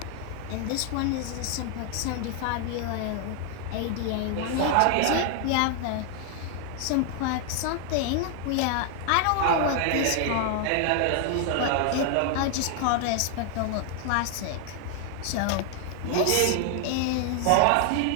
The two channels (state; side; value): different; both; correlation 0.00